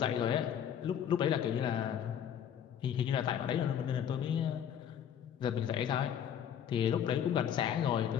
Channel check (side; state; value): right; quieter; 9.1 dB